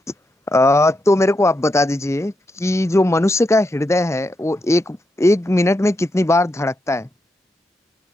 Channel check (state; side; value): normal; both; correlation 0.84